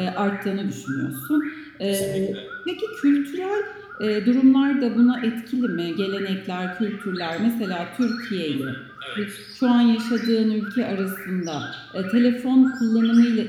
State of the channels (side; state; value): both; identical; correlation 1.00